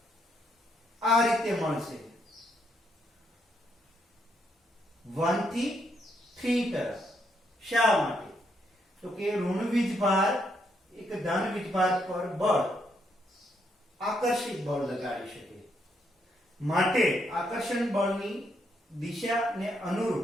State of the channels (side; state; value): both; normal; correlation 0.75